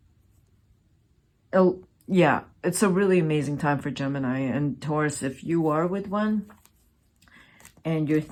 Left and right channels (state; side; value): identical; both; correlation 1.00